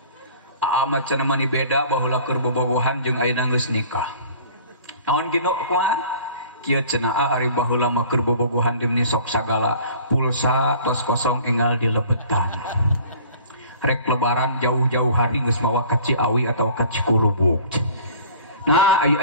Amat cenah mani beda baheula keur bobogohan jeung ayeuna geus nikah. Naon kitu kumaha? Kieu cenah ari baheula mah keur bobogohan dimni sok sagala pulsa tos kosong enggal dilebetan. Rek lebaran jauh-jauh hari geus mawa ka Ciawi atau ka Cikurubuk. Nah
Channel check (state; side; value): inverted; both; correlation -0.47